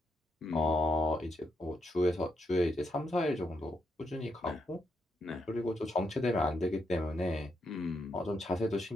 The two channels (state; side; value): normal; both; correlation 0.81